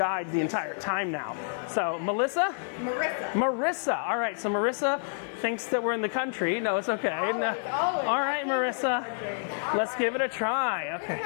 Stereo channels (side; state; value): right; silent; digital silence